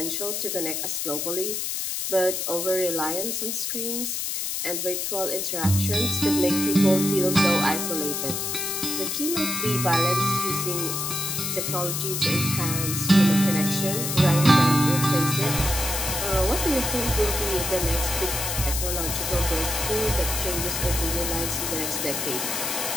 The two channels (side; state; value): left; noise; hiss, 2 dB below the sound